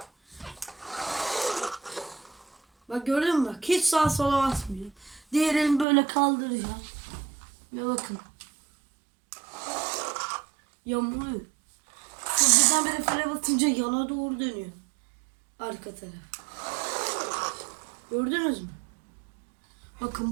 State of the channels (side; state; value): left; drops out; at 5.9 s